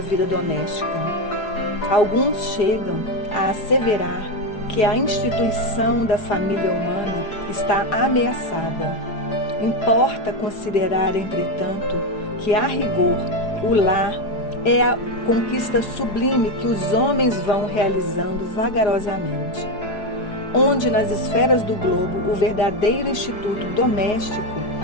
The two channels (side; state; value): right; late; 4.8 ms